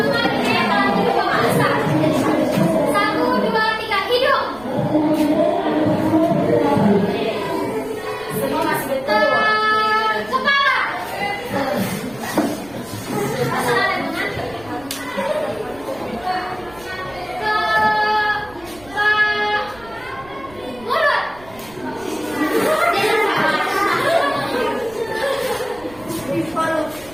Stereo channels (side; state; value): right; noise; rumble, 23 dB below the sound